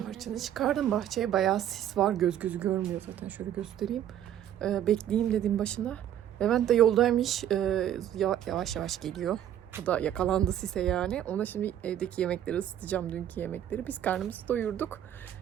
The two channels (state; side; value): quieter; left; 10.8 dB